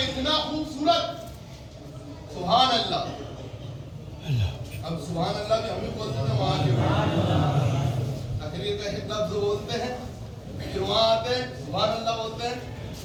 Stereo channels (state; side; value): identical; both; correlation 1.00